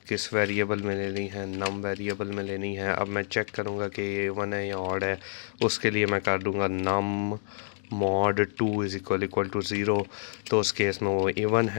किस वेरिएबल में लेनी है, नम वेरिएबल में लेनी है। अब मैं चेक करूँगा कि ये इवन है या ऑड है। उसके लिए मैं कर दूँगा नम मॉड 2 इज़ इक्वल टू 0, तो उस केस में वो इवन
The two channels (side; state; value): right; silent; digital silence